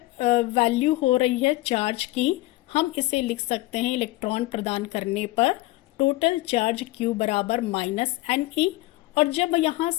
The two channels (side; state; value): right; quieter; 18.9 dB